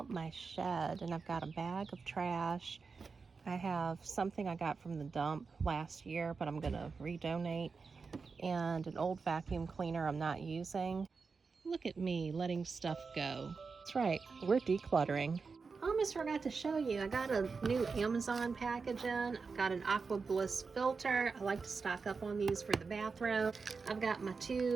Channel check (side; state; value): left; quieter; 4.8 dB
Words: my shed and I've got a bag of trash. I have something I got from the dump last year, but I'm gonna redonate, and an old vacuum cleaner I'm not using. Look at me letting stuff go. That's right, we're decluttering. I almost forgot to show you. I got a new Amazon package in. I've got an Aqua Bliss filter. I like to stock up on these for the bathroom. I've got my